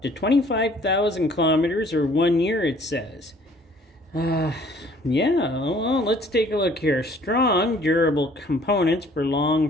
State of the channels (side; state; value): both; normal; correlation 0.56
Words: to 25,000 kilometers or 1 year, it says. Yeah, well, let's take a look here. Strong, durable components for